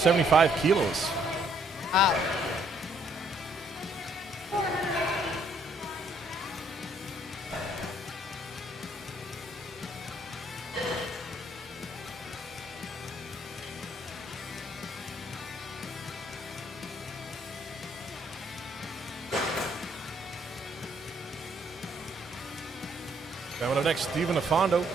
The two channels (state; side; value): normal; both; correlation 0.67